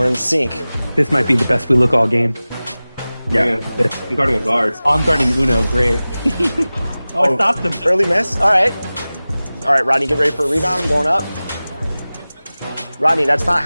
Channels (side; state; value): both; inverted; correlation -0.98